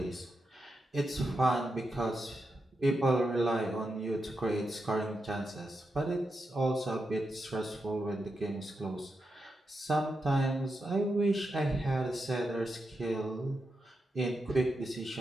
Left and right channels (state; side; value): normal; both; correlation 0.86